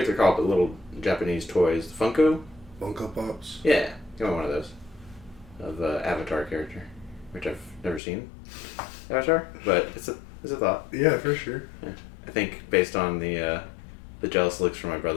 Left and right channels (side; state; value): right; drops out; at 8.0 s